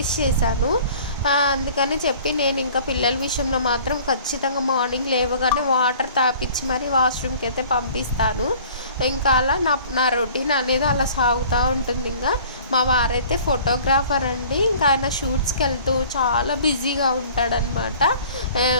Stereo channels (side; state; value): both; inverted; correlation -0.49